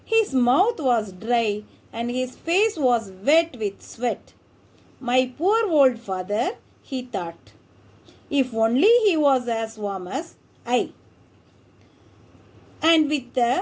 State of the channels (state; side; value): identical; both; correlation 1.00